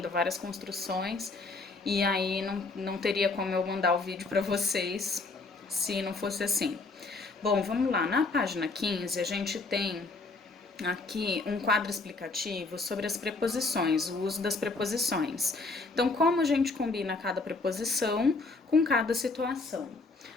várias construções, e aí não teria como eu mandar o vídeo para vocês se não fosse assim. Bom, vamos lá. Na página 15 a gente tem aqui um quadro explicativo sobre as preposições, o uso das preposições. Então, como a gente combina cada preposição com cada situação.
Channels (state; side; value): quieter; right; 3.6 dB